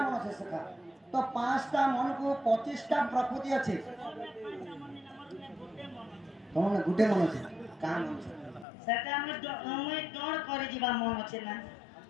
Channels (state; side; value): drops out; right; at 8.7 s